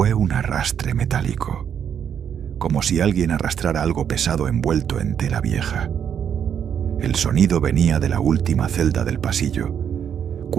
un arrastre metálico, como si alguien arrastrara algo pesado envuelto en tela vieja. El sonido venía de la última celda del pasillo,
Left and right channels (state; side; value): quieter; left; 8.4 dB